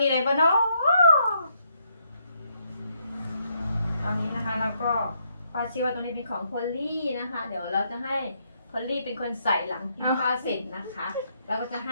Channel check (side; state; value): both; inverted; correlation -0.75